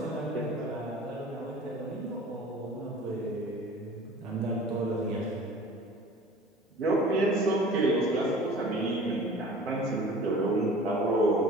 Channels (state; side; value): normal; both; correlation 0.44